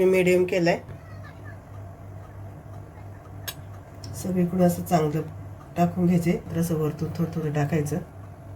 मीडियम केलाय. सगळीकडे असं चांगलं टाकून घ्यायचे. असं वरतून थोडं थोडं टाकायचं.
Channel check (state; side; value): identical; both; correlation 1.00